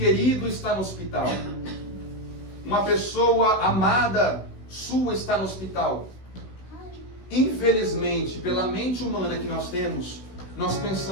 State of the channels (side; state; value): right; late; 16 ms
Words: está no hospital, uma pessoa amada sua está no hospital. Infelizmente, pela mente humana que nós temos, nós